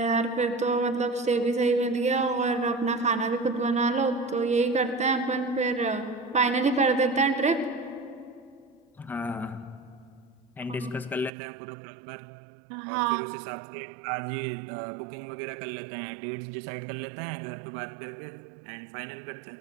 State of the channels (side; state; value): left; drops out; at 11.3 s